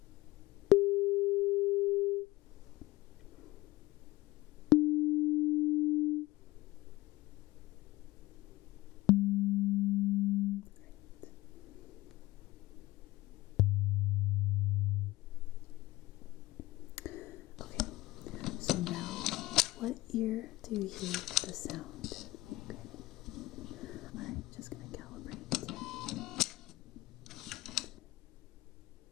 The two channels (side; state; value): right; quieter; 18.9 dB